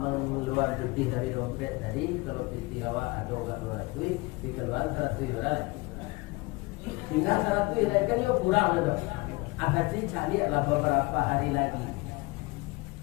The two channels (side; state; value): right; quieter; 23.9 dB